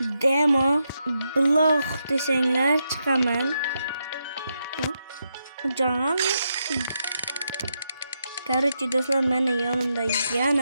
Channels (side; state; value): both; inverted; correlation -0.83